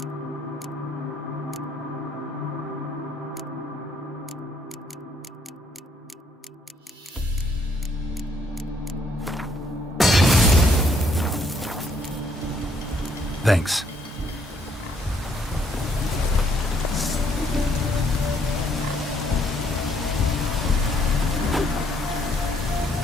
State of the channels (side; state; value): both; normal; correlation 0.68